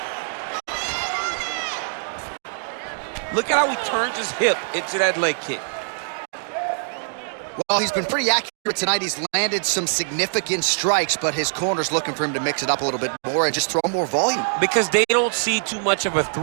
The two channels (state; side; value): silent; left; digital silence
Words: Look at how he turns his hip into that leg kick. Well, he's been pretty accurate tonight. He's landed some significant strikes, but his corner's looking for him to mix it up a little bit more and just throw more volume. Because they don't see too much of a